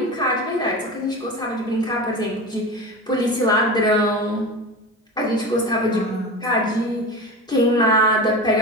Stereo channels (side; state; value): both; normal; correlation 0.28